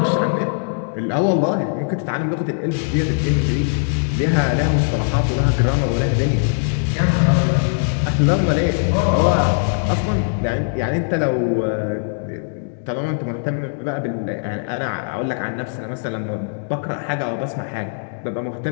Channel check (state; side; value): silent; right; digital silence